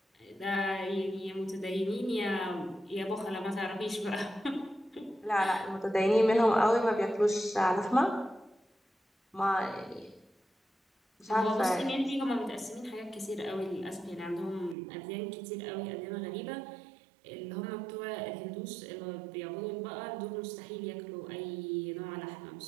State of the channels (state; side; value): drops out; left; at 14.8 s